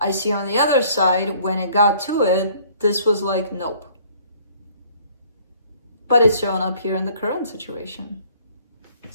I see on the other side, when it got to it, this was like, nope. But it's showing up here in the current situation.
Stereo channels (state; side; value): inverted; both; correlation -0.57